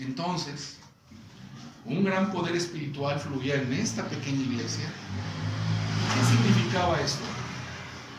un gran poder espiritual fluía en esta pequeña iglesia. ¿Qué significaba esto?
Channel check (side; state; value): both; identical; correlation 1.00